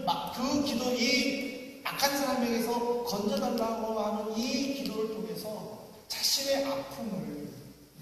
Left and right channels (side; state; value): both; identical; correlation 1.00